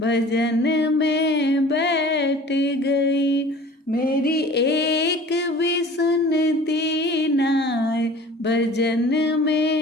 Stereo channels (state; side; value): normal; both; correlation 0.44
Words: में बैठ गई। मेरी एक भी सुनती नाय भजन